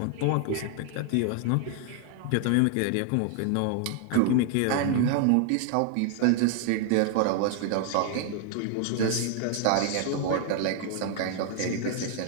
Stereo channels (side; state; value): both; different; correlation 0.00